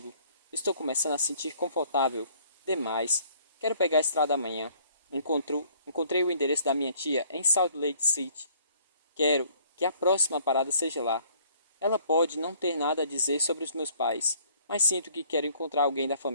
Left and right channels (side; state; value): both; inverted; correlation -0.59